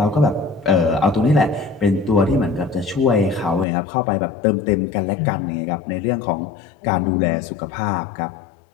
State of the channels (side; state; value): right; drops out; at 3.7 s